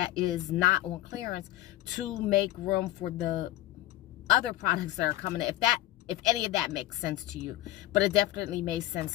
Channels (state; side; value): quieter; right; 15.6 dB